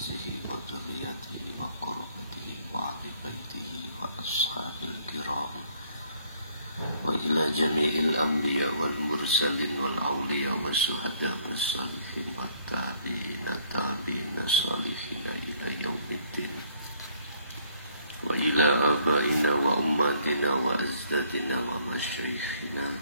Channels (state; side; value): inverted; both; correlation -0.63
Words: wa dzurriyyatihi wa qurrabatihi wa ahli baitihi wa ashabil kiram wa ila jami'il anbiya wal mursalin wal awliya wa syuhada was salihin wa tabi'ina salihin ila yaumiddin wa ila abaina wa ummatina wa azdadina wa masyaikhina